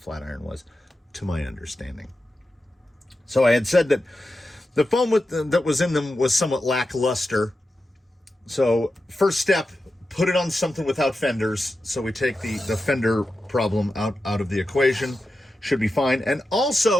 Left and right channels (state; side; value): normal; both; correlation 0.91